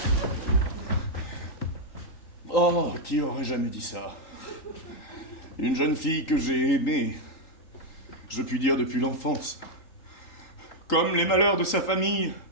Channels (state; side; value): late; right; 3.8 ms